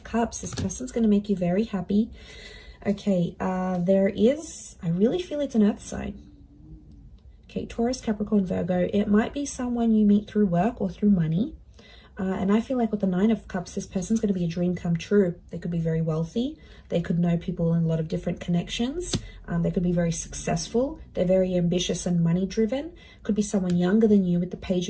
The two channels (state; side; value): identical; both; correlation 1.00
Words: Cups. This person's going to make you very happy. Okay, I really feel it's an earth sign. Okay, Taurus, Capricorn, Virgo. It might be someone you meet through work or through money. And I feel like with the 9 of Cups, this person's going to be a dream come true. They could be very wealthy. They could know people in a lot of different connections. They could be very successful. They're very ambitious and money driven. Could be someone younger than you with the